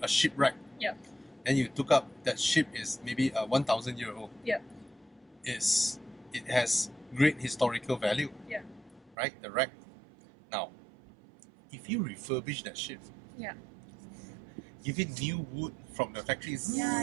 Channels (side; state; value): left; drops out; at 9.2 s